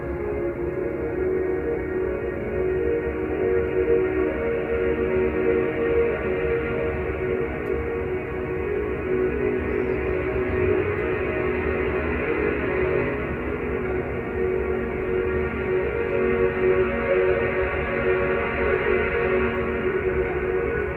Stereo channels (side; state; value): both; identical; correlation 1.00